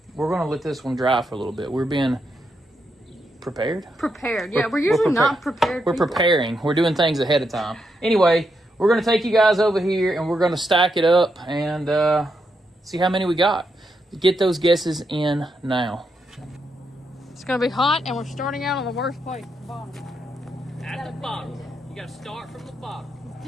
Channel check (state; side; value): normal; both; correlation 0.82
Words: we're gonna let this one dry for a little bit. We're being prepared. Yeah, we're usually not prepared. We're preparing. We're doing things ahead of time. Anyway, we're gonna take you guys over here, and we're gonna stack it up and see how many we got. Get those guesses in now. It's gonna be hot, and we're starting out on the worst place, the bottom. At the bottom. You gotta start from the bottom